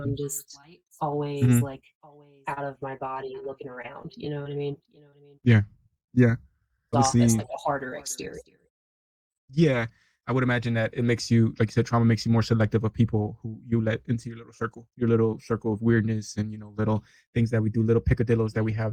just always mhm. like out of my body looking around. You know what I mean? Yeah, yeah. Off as Obviously, like a harder exterior. yeah. I would imagine that it makes you, like you said, trauma makes you more selective of people who you let into your little circle of weirdness, and little things that we do, little picadillos that we have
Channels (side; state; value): both; identical; correlation 1.00